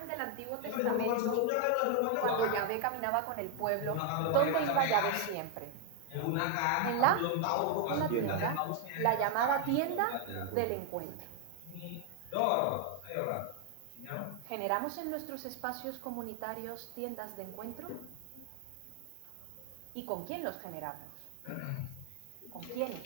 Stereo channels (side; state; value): both; different; correlation 0.01